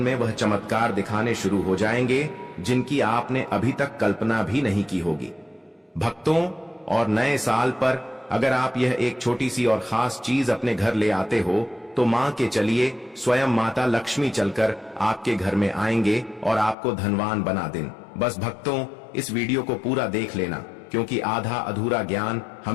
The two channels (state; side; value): drops out; right; at 16.8 s